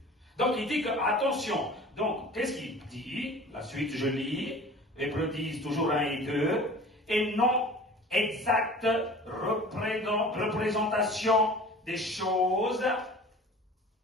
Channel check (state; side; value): normal; both; correlation 0.43